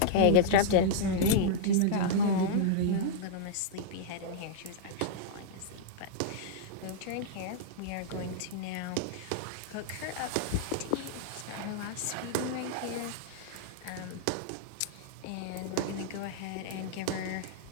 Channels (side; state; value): both; different; correlation -0.01